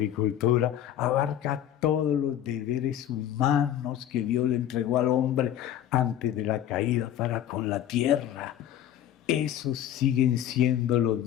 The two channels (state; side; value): quieter; right; 11.1 dB